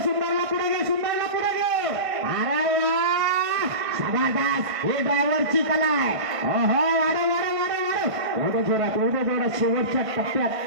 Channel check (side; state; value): left; late; 1.5 ms